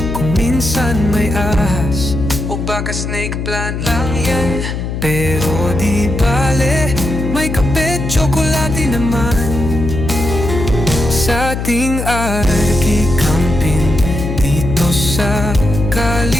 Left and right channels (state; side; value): noise; left; hum, 4 dB below the sound